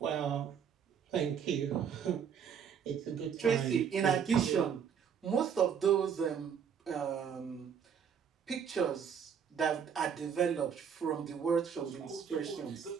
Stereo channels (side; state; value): left; quieter; 7.5 dB